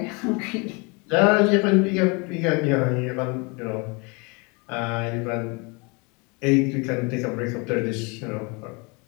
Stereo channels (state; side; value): quieter; right; 29.9 dB